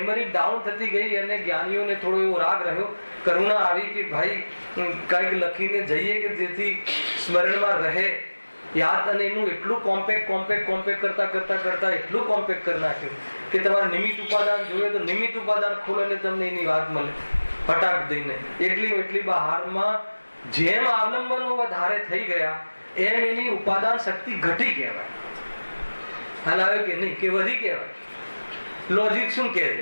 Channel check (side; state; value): both; inverted; correlation -1.00